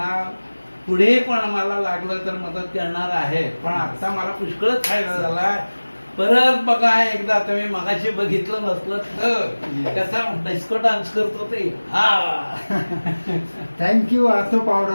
पुढे पण मला लागलं तर मदत करणार आहे. पण आता मला पुष्कळच फायदा झाला. परत बघा एकदा तुम्ही मगाशी बघितलं नसलं तर कसा डिस्को डान्स करतो ते. हा थँक्यू ऑर्थो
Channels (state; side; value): inverted; both; correlation -1.00